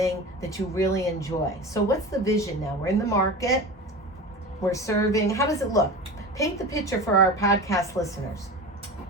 that you really enjoy. So what's the vision now? We're in the market. We're serving. How does it look? Paint the picture for our podcast listeners.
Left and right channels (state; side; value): normal; both; correlation 0.30